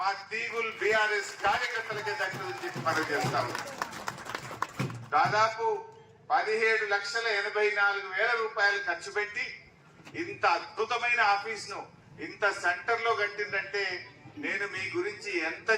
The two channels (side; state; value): both; identical; correlation 1.00